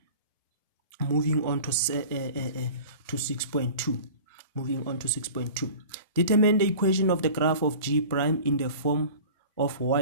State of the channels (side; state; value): both; inverted; correlation -0.40